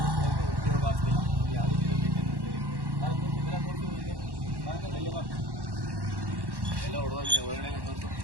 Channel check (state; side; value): late; left; 1.1 ms